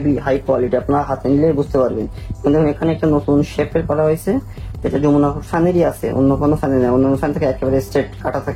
হাই কোয়ালিটি, আপনারা হাতে নিলে বুঝতে পারবেন। কিন্তু এখানে একটা নতুন শেপের করা হয়েছে, এটা যমুনা ফ্যানেরই আছে, অন্য কোনো ফ্যানে নেই, অন্য ফ্যান থেকে একেবারে স্ট্রেট কাটা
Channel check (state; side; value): identical; both; correlation 1.00